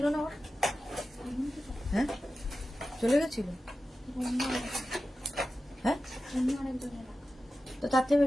না ওর, হ্যাঁ চলে গেছিল, হ্যাঁ তো তার থেকে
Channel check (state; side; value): normal; both; correlation 0.93